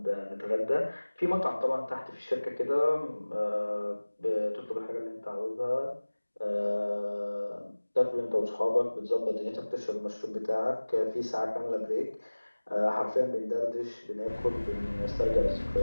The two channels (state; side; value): inverted; both; correlation -1.00